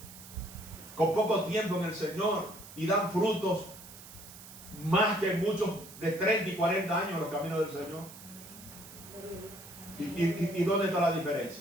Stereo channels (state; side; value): noise; right; hiss, 16 dB below the sound